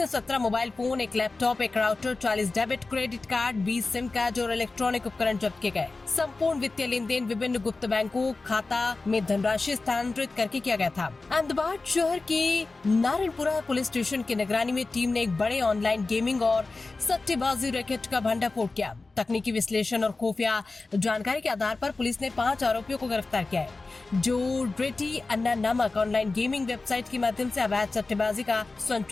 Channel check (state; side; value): quieter; right; 3.6 dB